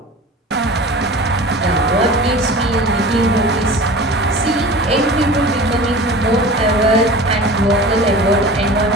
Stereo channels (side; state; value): both; normal; correlation 0.37